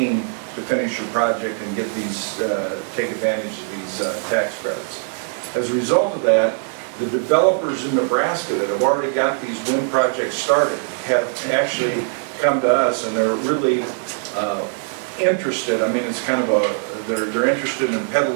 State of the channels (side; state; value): left; silent; digital silence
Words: to finish your project and get these, take advantage of these tax credits. As a result of that, the developers in Nebraska that have already got these wind projects started have actually come to us, and they're really interested. I mean, it's kind of a, they're interested in